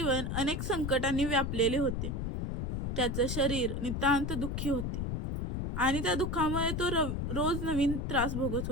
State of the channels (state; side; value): noise; left; rumble, 2 dB below the sound